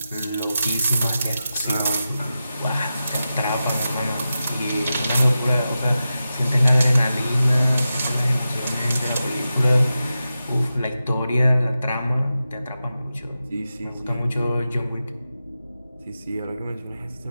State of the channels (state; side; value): inverted; both; correlation -0.92